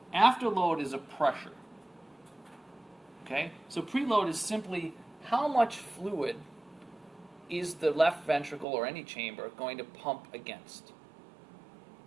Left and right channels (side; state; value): left; drops out; at 8.7 s